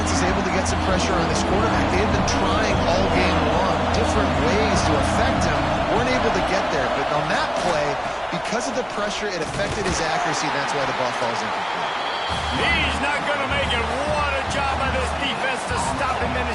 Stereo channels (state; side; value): identical; both; correlation 1.00